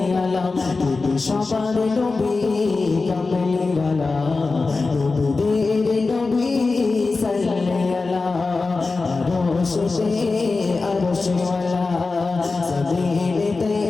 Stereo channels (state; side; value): quieter; right; 3.9 dB